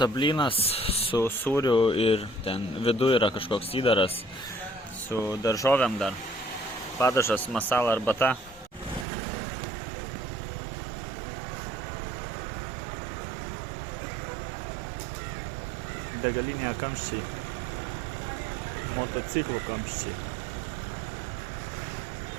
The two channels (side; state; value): left; drops out; at 9.1 s